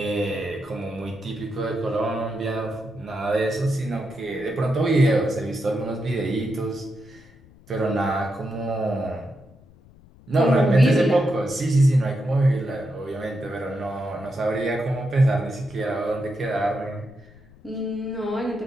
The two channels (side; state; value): left; noise; rumble, 25 dB below the sound